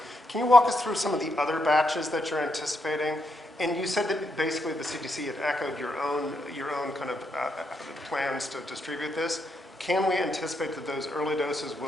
can you walk us through some of the other batches that you're anticipating? And you said that basically the CDC had echoed your own kind of plans to distribute this. Can we anticipate that those early doses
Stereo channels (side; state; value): both; normal; correlation 0.80